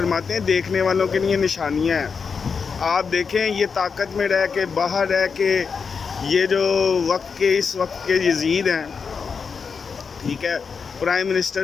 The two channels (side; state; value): right; quieter; 5.6 dB